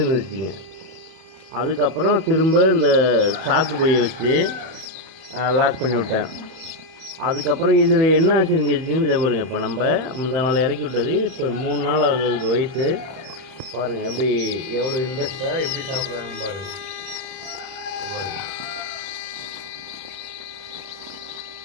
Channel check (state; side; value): late; left; 31 ms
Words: அதுக்கப்புறம் திரும்ப இந்த சாக்கு பையை வச்சு லாக் பண்ணி விட்டேன். அதுக்கப்புறம் இதில் என்ன ஆச்சுன்னு கேட்டிங்கன்னு இதை பாருங்கள். இப்போ நம்ம முந்தா நாள் இறக்கி விட்டது, இப்போ 3 நாள் ஆகுது வயசு. பாருங்கள் எப்படி எவ்வளோ இன்ட்ரெஸ்ட்டாக எப்படி சாப்பிட்றாங்க பாருங்கள்.